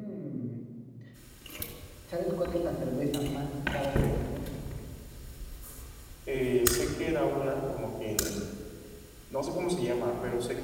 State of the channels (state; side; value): identical; both; correlation 1.00